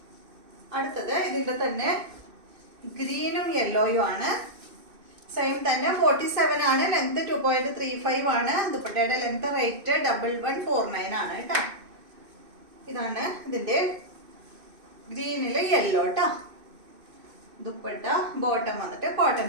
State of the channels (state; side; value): late; left; 2.6 ms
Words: അടുത്തത് ഇതിന്റെ തന്നെ ഗ്രീനും യെല്ലോയും ആണ്. സെയിം തന്നെ 47 ആണ്. ലെങ്ത് 2.35 ആണ്. ദുപ്പട്ടയുടെ ലെങ്ത് റേറ്റ് 1149 ആണ് കേട്ടോ. ഇതാണ് ഇതിന്റെ ഗ്രീനില് യെല്ലോ കേട്ടോ. ദുപ്പട്ട ബോട്ടം വന്നിട്ട് കോട്ടൺ